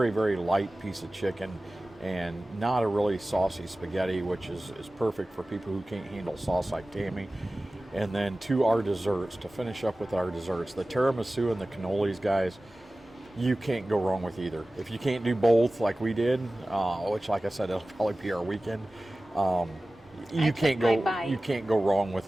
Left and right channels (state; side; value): normal; both; correlation 0.97